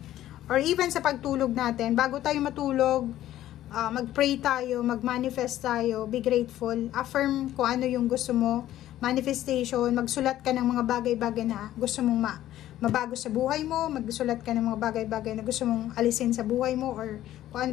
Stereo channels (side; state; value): right; quieter; 13.3 dB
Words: Or even sa pagtulog natin, bago tayo matulog, mag-pray tayo, mag-manifest tayo, be grateful, affirm kung ano yung gusto mo, manifestation, magsulat ka ng mga bagay-bagay na gusto mong mabago sa buhay mo, magsulat ka ng mga bagay-bagay na gusto mong alisin sa buhay mo, or kung ano